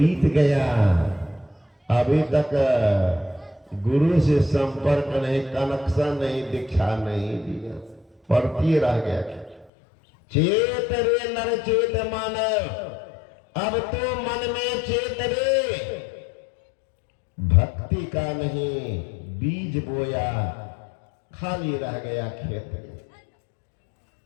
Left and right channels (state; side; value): drops out; right; at 9.7 s